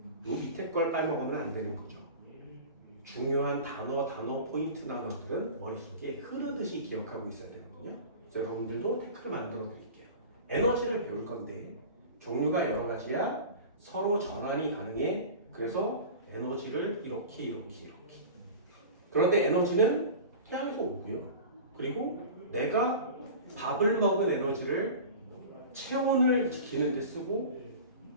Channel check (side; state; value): both; inverted; correlation -0.35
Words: 요 밑에 걸 빼먹으면 안 되는 거죠. 중요한 단어 포인트 단어들은 머릿속에 흐르듯이 기억하고 있어야 되거든요. 그래서 여러분들도 태클 만들어 드릴게요. 에너지를 배울 건데 종류가 여러 가지야. 서로 전환이 가능해. 그래서 에너지를 이렇게. 그런데 에너지는 태양에서 오고요. 그리고 내가 밥을 먹은 에너지를 체온을 지키는 데 쓰고